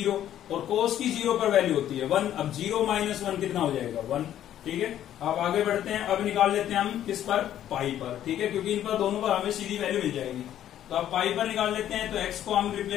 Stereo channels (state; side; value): quieter; right; 11.4 dB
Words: और cos की 0 पर वैल्यू होती है 1। अब 0 माइनस 1 कितना हो जाएगा, 1। ठीक है, अब आगे बढ़ते हैं। अब निकाल लेते हैं हम किस पर, पाई पर। ठीक है, क्योंकि इन पर दोनों पर हमें सीधी वैल्यू मिल जाएगी। तो अब पाई पर निकाल लेते हैं। तो x को हम